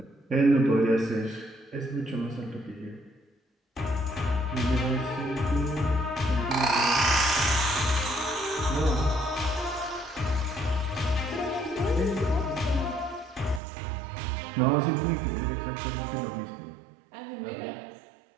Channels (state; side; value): drops out; left; at 13.6 s